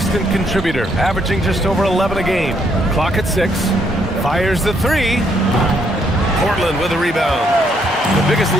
contributor, averaging just over 11 a game. Clock at 6. Fires the 3. Portland with a rebound. The biggest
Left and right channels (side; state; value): both; normal; correlation 0.71